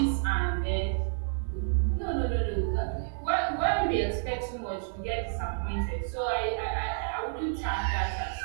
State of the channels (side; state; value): left; silent; 58 dB below the other